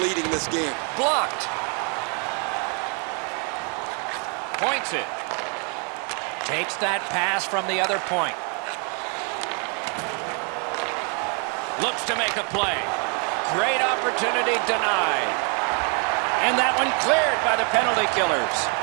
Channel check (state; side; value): quieter; left; 37.4 dB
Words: this game. Blocked. Points it. Takes that pass from the other point. Looks to make a play. Great opportunity denied. And that one cleared by the penalty killers.